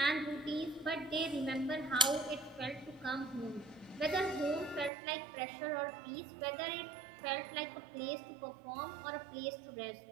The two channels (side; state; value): left; drops out; at 4.9 s